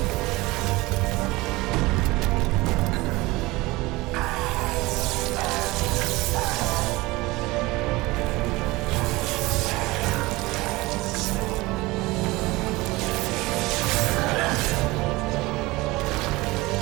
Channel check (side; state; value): left; quieter; 21.2 dB